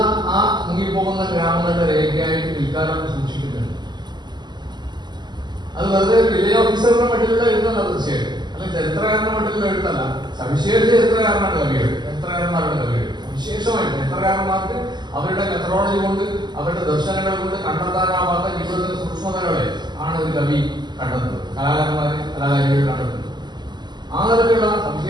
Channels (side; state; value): left; late; 0.21 ms